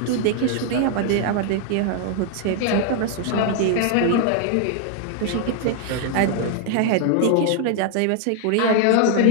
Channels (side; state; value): both; different; correlation 0.00